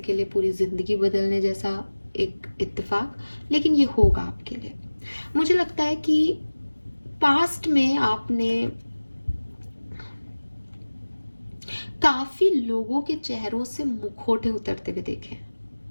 लिए पूरी ज़िंदगी बदलने जैसा एक इत्तेफाक, लेकिन ये होगा आपके लिए। मुझे लगता है कि पास्ट में आपने काफी लोगों के चेहरों से मुखौटे उतरते हुए देखे।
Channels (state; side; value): inverted; both; correlation -1.00